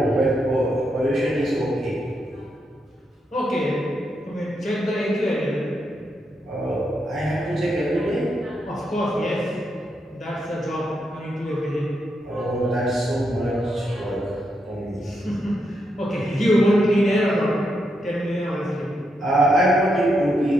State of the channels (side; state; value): both; normal; correlation 0.81